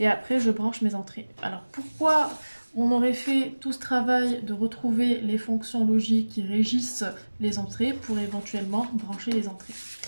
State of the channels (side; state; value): both; inverted; correlation -1.00